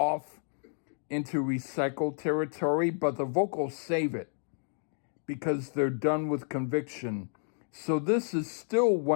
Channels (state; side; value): silent; right; digital silence